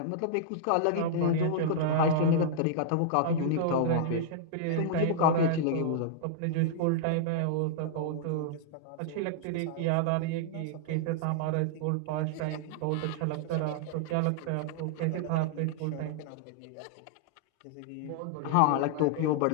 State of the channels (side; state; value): both; different; correlation -0.01